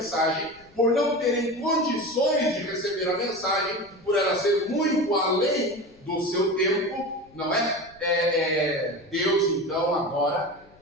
por não terem condições de receber a mensagem, por ela ser muito além do seu tempo, não é? Deus, então, agora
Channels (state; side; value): noise; left; rumble, 28 dB below the sound